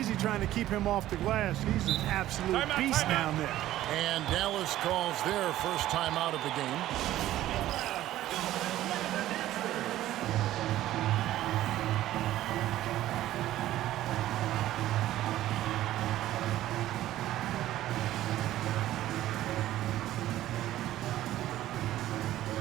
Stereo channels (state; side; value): quieter; left; 14.0 dB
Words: trying to keep him off the glass. He's an absolute beast down there. And Dallas calls their first time out of the game.